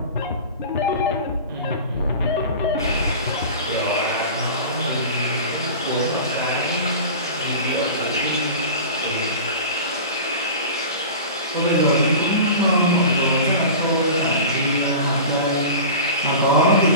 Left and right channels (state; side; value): inverted; both; correlation -0.34